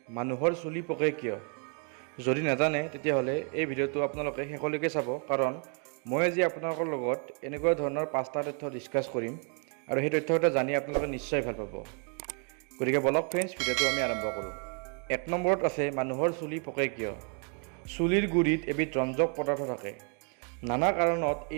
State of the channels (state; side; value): quieter; left; 39.5 dB